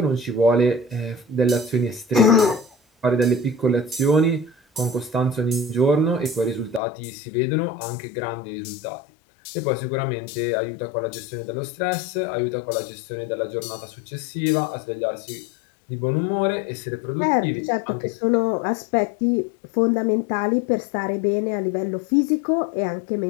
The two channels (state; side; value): drops out; right; at 6.8 s